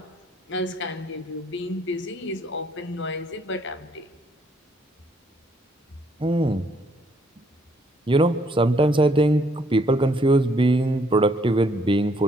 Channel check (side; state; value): both; normal; correlation 0.68